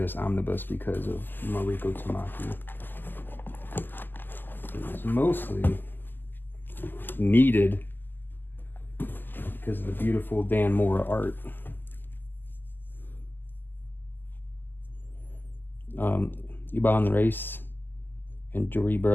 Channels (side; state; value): right; late; 0.091 ms